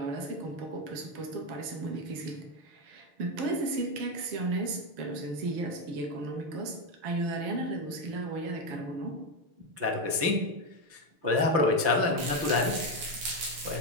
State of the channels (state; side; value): late; left; 6.6 ms